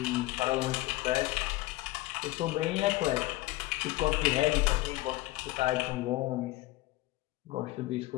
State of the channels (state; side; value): quieter; right; 18.7 dB